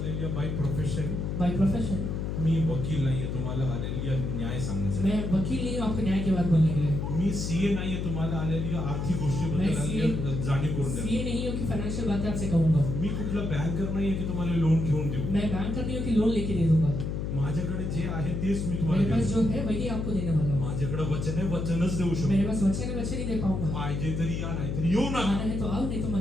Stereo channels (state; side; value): noise; left; hum, 2 dB below the sound